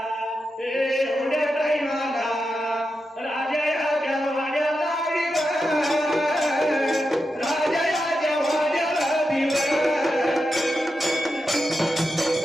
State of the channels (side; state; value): both; normal; correlation 0.88